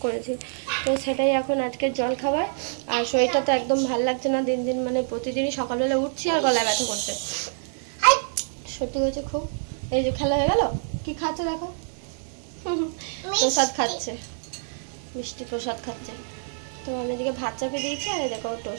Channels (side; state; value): left; silent; digital silence